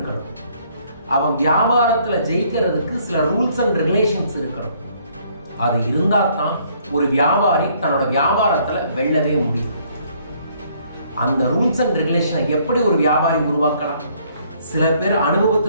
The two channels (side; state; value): both; inverted; correlation -0.64